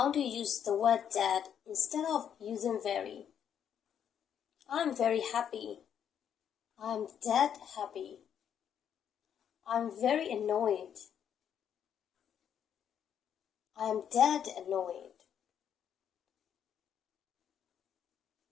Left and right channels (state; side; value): quieter; right; 8.8 dB